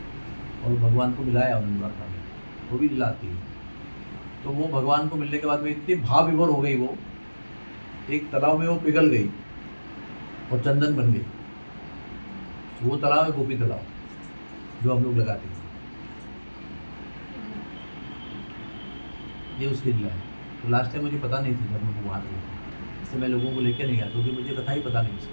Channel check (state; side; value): inverted; both; correlation -1.00